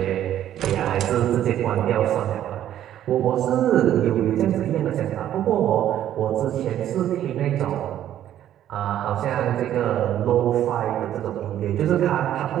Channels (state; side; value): quieter; left; 11.5 dB